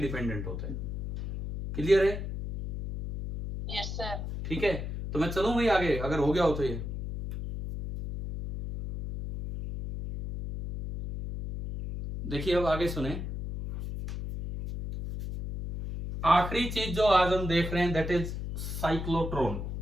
होता है। क्लियर है? Yes sir. ठीक है, तो मैं चलूं भाई आगे, अगर हो गया हो तो ये देखिए। अब आगे सुने, आखिरी चीज जो आज हम देख रहे हैं दैट इज साइक्लोट्रॉन।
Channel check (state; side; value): noise; left; hum, 5 dB below the sound